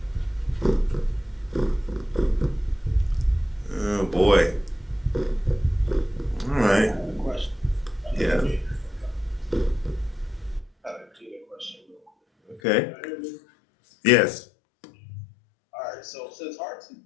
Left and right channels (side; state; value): right; drops out; at 12.6 s